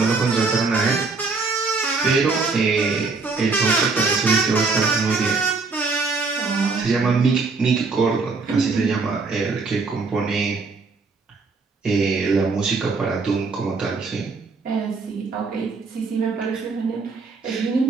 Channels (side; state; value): left; quieter; 4.3 dB